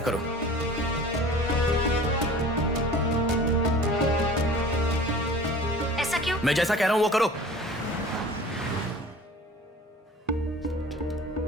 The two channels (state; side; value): normal; both; correlation 0.42